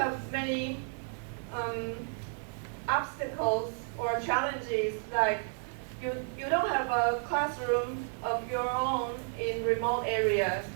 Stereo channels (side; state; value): left; silent; 56 dB below the other